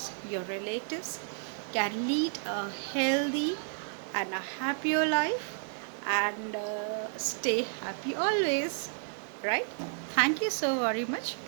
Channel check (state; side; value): silent; left; 57 dB below the other